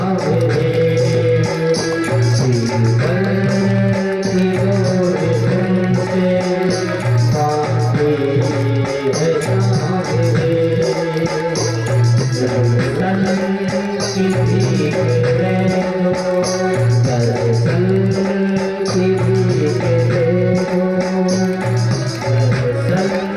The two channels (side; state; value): both; identical; correlation 1.00